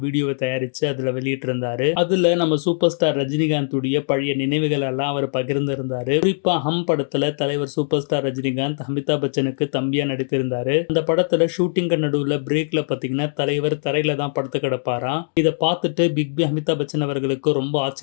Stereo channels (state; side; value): silent; right; digital silence